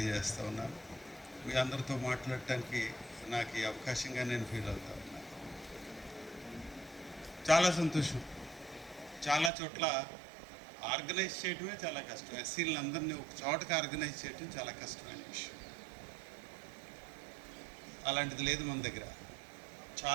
ఉన్నాను. మీ అందరితో మాట్లాడటానికి నాకు ఈ అవకాశంగా నేను ఫీల్ అవుతా ఉన్నాను. చాలా సంతోషం. చాలా చోట్ల ఆర్గనైజ్ చేయడమే చాలా కష్టం. ఎస్సీలందరినీ ఒక చోటకి ఆర్గనైజ్ చేయడం చాలా కష్టమైన విషయం. అలాంటిది లేదు మన దగ్గర.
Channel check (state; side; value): drops out; left; at 9.5 s